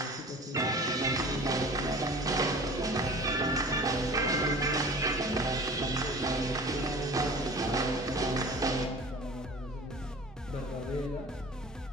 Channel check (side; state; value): both; normal; correlation 0.41